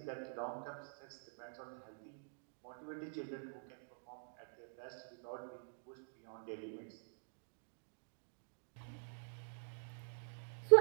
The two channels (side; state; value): left; silent; digital silence